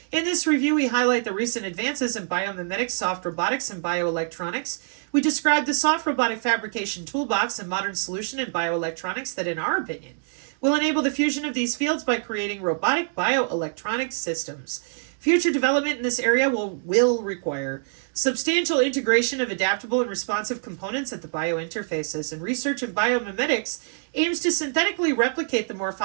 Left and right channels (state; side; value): silent; left; digital silence